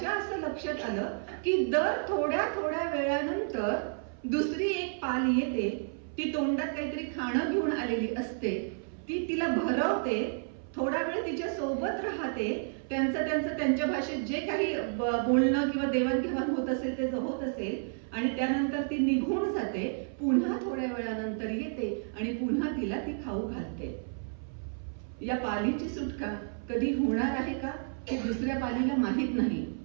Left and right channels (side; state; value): left; silent; 57 dB below the other